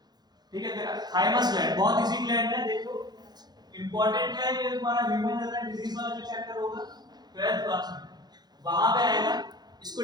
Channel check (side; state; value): left; late; 0.20 ms